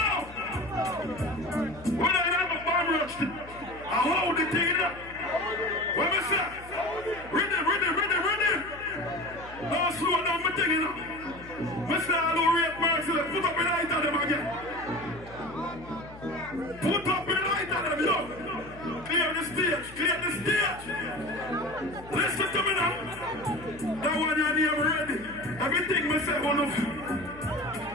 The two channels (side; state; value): left; noise; hum, 18 dB below the sound